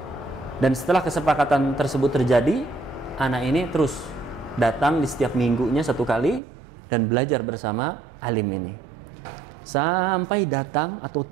dan setelah kesepakatan tersebut terjadi, anak ini terus datang di setiap minggunya 1 kali dan belajar bersama alim ini. Sampai datang atau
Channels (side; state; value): left; drops out; at 6.4 s